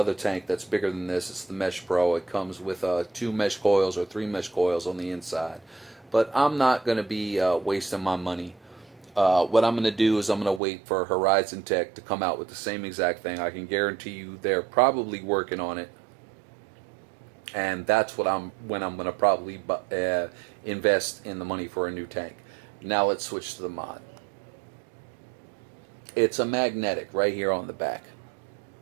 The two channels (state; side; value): drops out; left; at 10.6 s